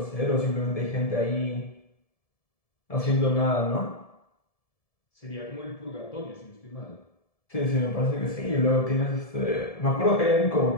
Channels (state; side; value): late; right; 1.7 ms